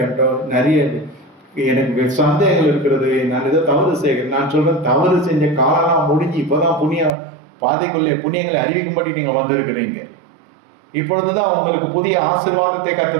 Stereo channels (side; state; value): left; drops out; at 7.1 s